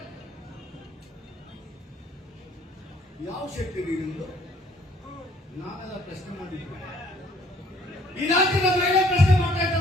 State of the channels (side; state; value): both; normal; correlation 0.61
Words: ಯಾವ ಶಕ್ತಿ ನಿಮ್ದು? ನಾವೆಲ್ಲ ಪ್ರಶ್ನೆ ಮಾಡಿದ್ವಿ. ಈ ರಾಜ್ಯದ ಮಹಿಳೆ ಪ್ರಶ್ನೆ ಮಾಡ್ತಾ ಇದ್ದ